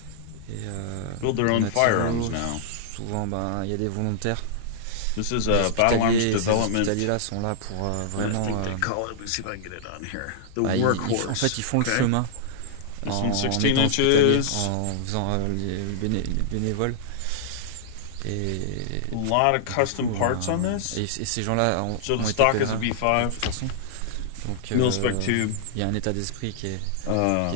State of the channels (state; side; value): different; both; correlation -0.01